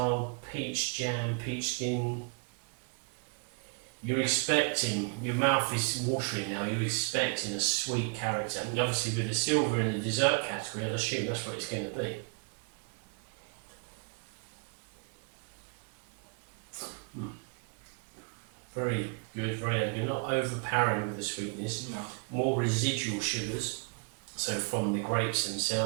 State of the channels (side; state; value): left; quieter; 37.8 dB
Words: peach jam, peach skin. You're expecting, your mouth is watering now, you're expecting a sweet character. And obviously with the silver in the dessert category, I assume that's what it's going to be. Very good, very elegant, not overpowering with the sweetness, No. more residual sugars, so from the grapes